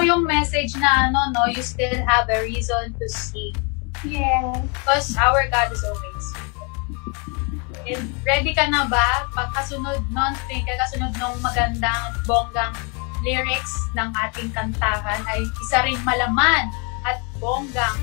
yung message na you still have a reason to seek. Yes. Because our God is always. And ready ka na ba? Pagkasunod nung magandang at bonggang lyrics ng ating kantahan ay isa ring malaman at bonggang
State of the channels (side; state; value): right; quieter; 34.1 dB